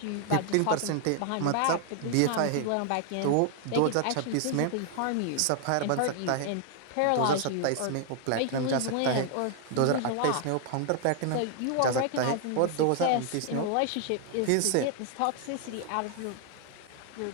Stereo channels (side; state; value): both; different; correlation 0.00